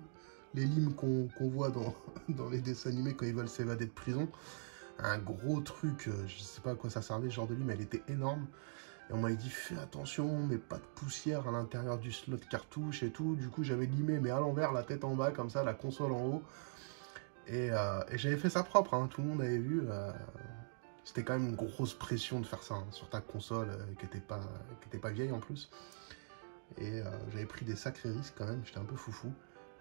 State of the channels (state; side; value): silent; left; digital silence